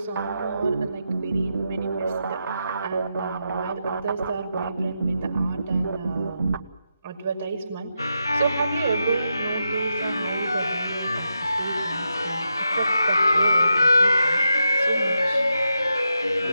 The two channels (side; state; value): both; inverted; correlation -0.85